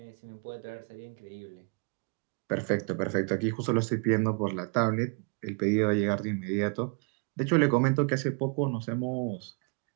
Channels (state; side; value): quieter; left; 35.3 dB